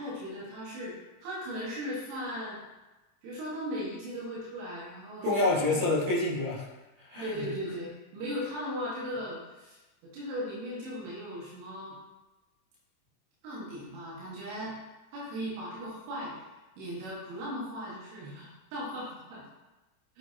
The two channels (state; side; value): late; left; 26 ms